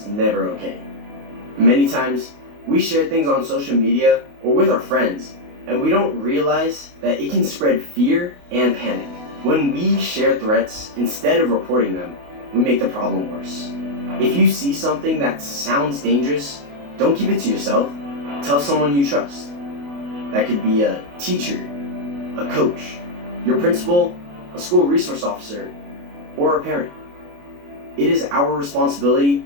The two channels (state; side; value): late; left; 28 ms